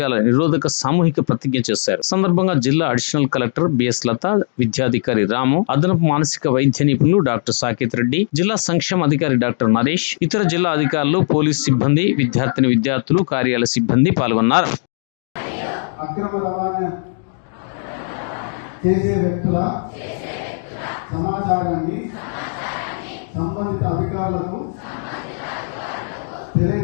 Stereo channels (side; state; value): right; silent; digital silence